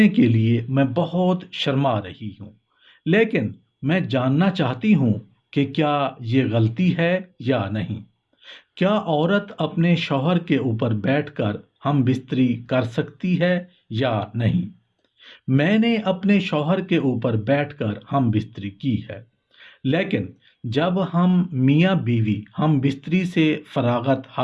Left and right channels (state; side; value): identical; both; correlation 1.00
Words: के लिए मैं बहुत शर्मा रही हूँ, लेकिन मैं जानना चाहती हूँ कि क्या ये गलती है या नहीं। क्या औरत अपने शौहर के ऊपर बैठकर हम बिस्तरी कर सकती है या नहीं? मैंने अपने शौहर के ऊपर बैठकर हम बिस्तरी की है, लेकिन जब हम मियाँ बीवी हम बिस्तरी से फरागत